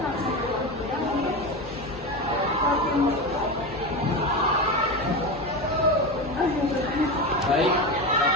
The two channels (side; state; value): both; normal; correlation 0.20